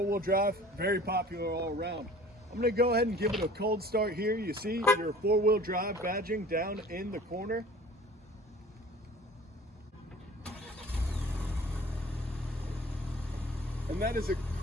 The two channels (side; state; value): both; normal; correlation 0.46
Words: drive, very popular all around. I'm going to go ahead and give it a cold start here. You see your four-wheel drive badging down in the corner. And that is a